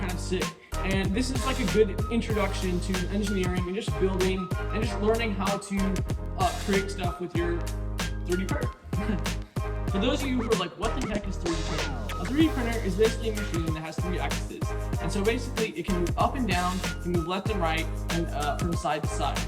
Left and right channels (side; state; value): both; identical; correlation 1.00